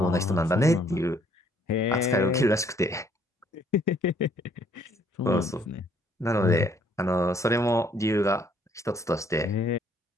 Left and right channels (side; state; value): both; normal; correlation 0.65